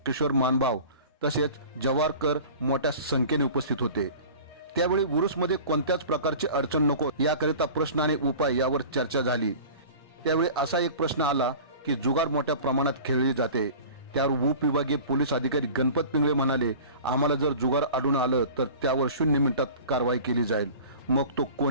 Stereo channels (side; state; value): both; inverted; correlation -0.40